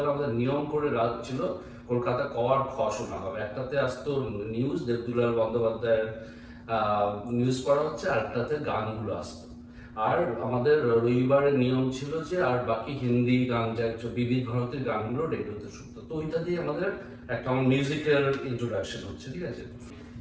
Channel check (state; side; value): identical; both; correlation 1.00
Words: আমাদের নিয়ম করে রাত ছিল কলকাতা ক আর খ শোনা হবে। একটাতে আসতো নিউজ, দেবদুলাল বন্দ্যোপাধ্যায়ের নিউজ পড়া হচ্ছে, আর একটাতে গানগুলো আসতো। আর আমাদের রবিবারের নিয়ম ছিল যে আর বাকি হিন্দি গান, যা বিবিধ ভারতের গানগুলো রেডিওতে শুনতো। তো ওইটা দিয়ে আমাদের একটা আমার মিউজিক্যাল ইন্ট্রোডাকশন হচ্ছে, ঠিক আছে।